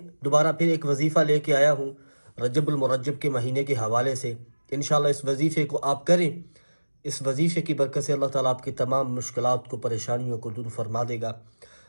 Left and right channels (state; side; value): inverted; both; correlation -1.00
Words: دوبارہ پھر ایک وظیفہ لے کے آیا ہوں رجب المرجب کے مہینے کے حوالے سے۔ انشاءاللہ اس وظیفے کو آپ کریں، اس وظیفے کی برکت سے اللہ تعالیٰ آپ کی تمام مشکلات کو، پریشانیوں کو دور فرما دے گا۔